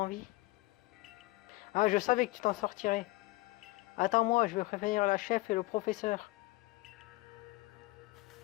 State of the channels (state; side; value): quieter; right; 21.0 dB